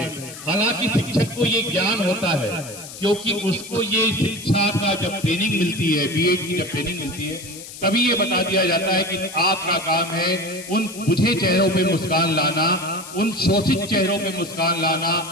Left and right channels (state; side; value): noise; left; hiss, 13 dB below the sound